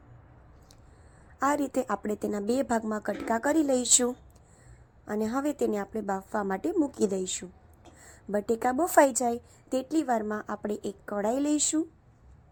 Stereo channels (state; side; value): identical; both; correlation 1.00